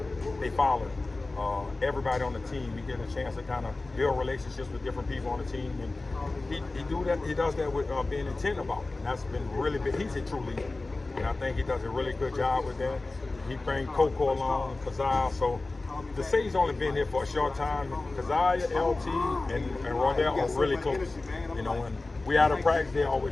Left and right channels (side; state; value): right; quieter; 3.2 dB